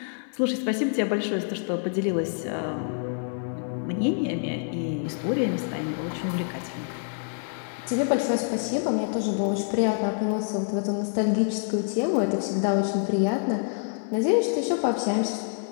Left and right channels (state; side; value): silent; right; digital silence